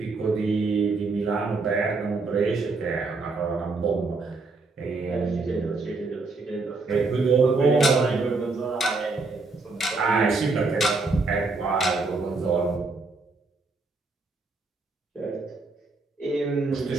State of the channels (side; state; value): left; quieter; 3.8 dB